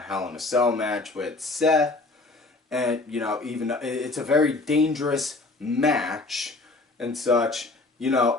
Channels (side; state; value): right; quieter; 3.3 dB